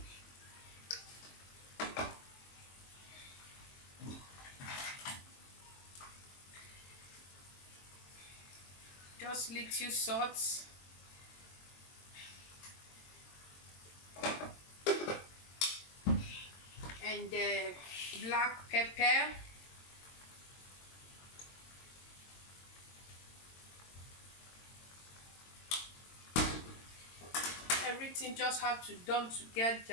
just little salt. And black pepper. Everything just have to done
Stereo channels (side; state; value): right; late; 22 ms